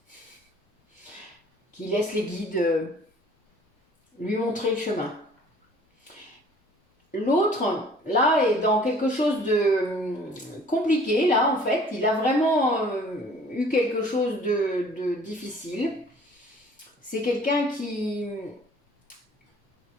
qui laisse les guides lui montrer le chemin. L'autre, là, est dans quelque chose de compliqué, là, en fait. Il a vraiment eu quelque chose de difficile. C'est quelqu'un qui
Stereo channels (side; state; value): both; normal; correlation 0.53